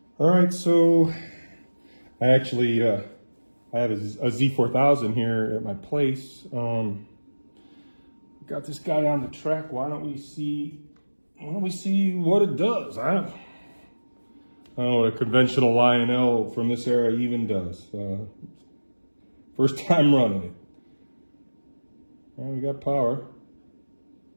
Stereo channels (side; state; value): both; inverted; correlation -1.00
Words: All right, so I actually I have a Z4000 here at my place. Got this guy on the track. Why don't we see what it does? I don't know what a conventional Lionel from this era even does. First time running it. Well, we got power.